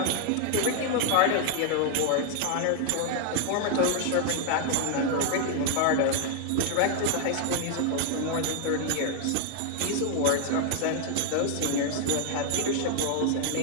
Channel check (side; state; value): both; different; correlation 0.00